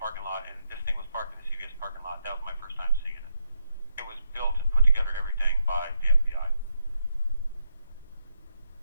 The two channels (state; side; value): inverted; both; correlation -0.78